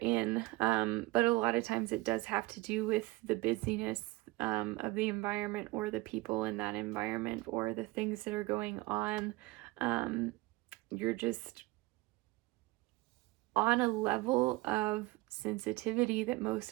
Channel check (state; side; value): quieter; left; 21.0 dB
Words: But a lot of times it does have to do with the busyness of the environment, or the people in that environment, or the things that are going on. You're just on a level of sensitivity that most